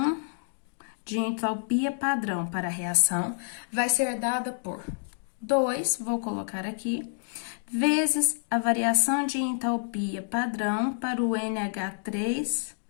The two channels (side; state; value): right; silent; digital silence